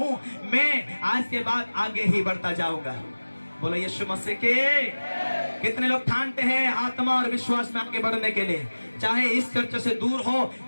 मैं आज के बाद आगे ही बढ़ता जाऊंगा। बोलो यीशु मसीह के। कितने लोग ठानते हैं आत्मा और विश्वास में आगे बढ़ने के लिए? चाहे इस चर्च से दूर हो,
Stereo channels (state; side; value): inverted; both; correlation -1.00